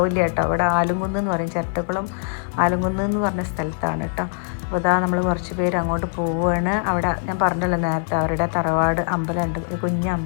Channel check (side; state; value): right; silent; 64 dB below the other